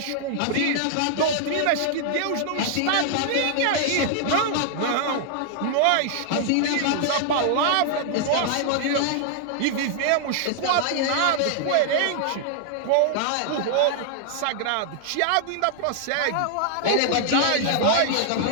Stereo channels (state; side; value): different; both; correlation 0.00